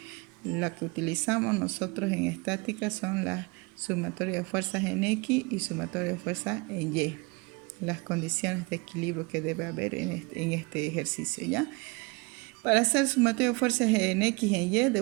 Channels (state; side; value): quieter; left; 27.5 dB